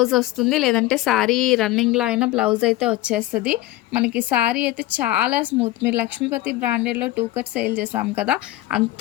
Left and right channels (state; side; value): quieter; right; 16.6 dB